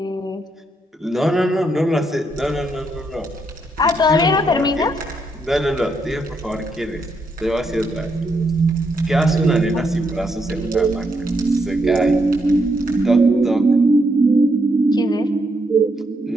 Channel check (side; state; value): both; normal; correlation 0.78